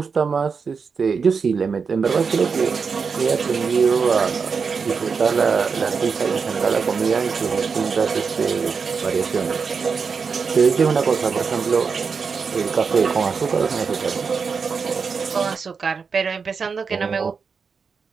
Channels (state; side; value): quieter; left; 5.5 dB